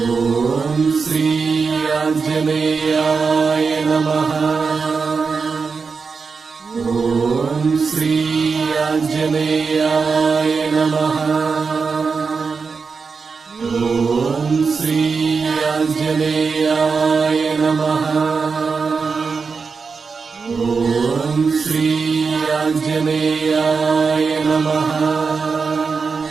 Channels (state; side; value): quieter; left; 5.0 dB